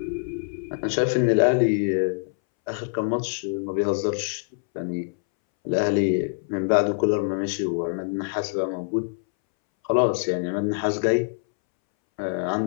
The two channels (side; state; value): right; silent; 62 dB below the other